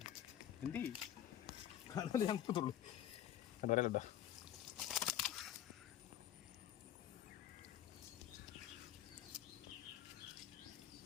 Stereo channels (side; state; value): right; quieter; 11.3 dB